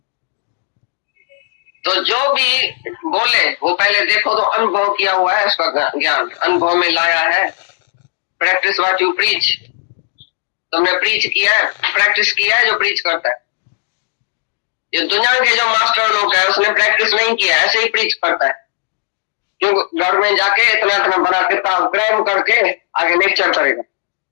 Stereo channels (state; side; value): silent; right; digital silence